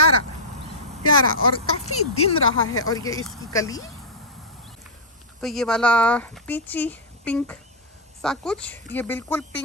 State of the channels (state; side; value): normal; both; correlation -0.07